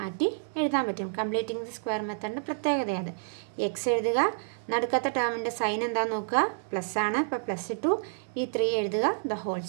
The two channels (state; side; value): silent; left; digital silence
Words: എഴുതാൻ പറ്റും. കംപ്ലീറ്റിംഗ് ദി സ്ക്വയർ മെത്തേഡിൻ്റെ പ്രത്യേകതയാണ്. x എഴുതുക, നടുക്കത്തെ ടേമിൻ്റെ സൈൻ എന്താണെന്ന് നോക്കുക, പ്ലസ് ആണ്, അപ്പോൾ പ്ലസ് ഇട്ടു. ഈ 3 എഴുതുക,